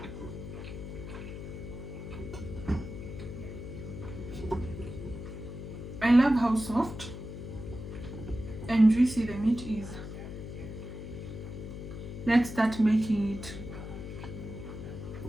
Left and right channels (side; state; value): left; noise; hum, 9 dB below the sound